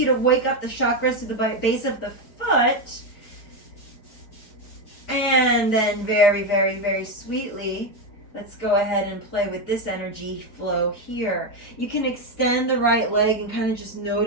to wake up the chakras to the base of the foot. And then very, very, very sweetly, let's go ahead and play with this energy flow here. You can extend the right leg and kind of just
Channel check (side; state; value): right; late; 4.7 ms